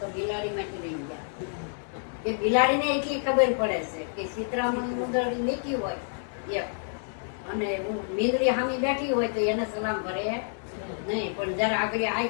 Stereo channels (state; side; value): silent; right; digital silence